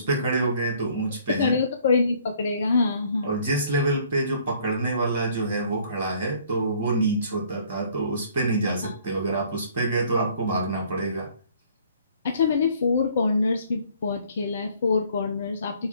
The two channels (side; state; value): both; inverted; correlation -0.59